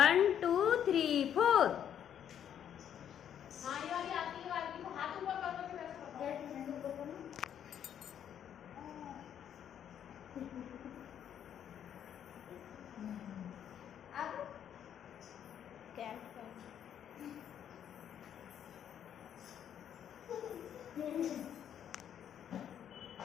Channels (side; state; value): right; quieter; 9.4 dB